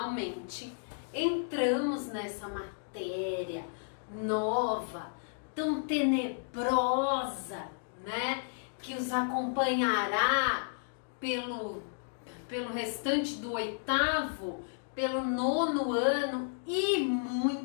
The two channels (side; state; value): right; silent; digital silence